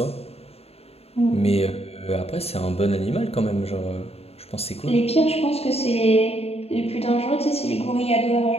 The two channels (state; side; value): late; right; 0.29 ms